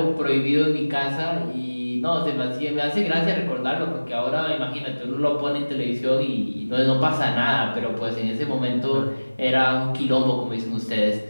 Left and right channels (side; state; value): both; inverted; correlation -1.00